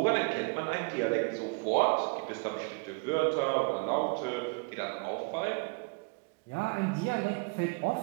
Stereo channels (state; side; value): quieter; left; 33.3 dB